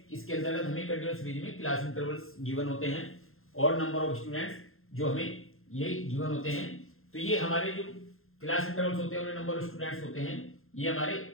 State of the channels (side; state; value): right; late; 0.61 ms